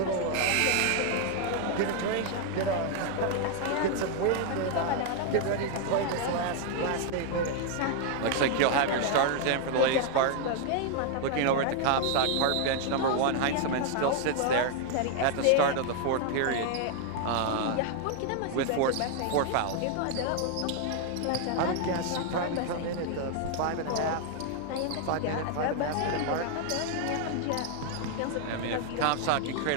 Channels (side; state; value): both; different; correlation 0.00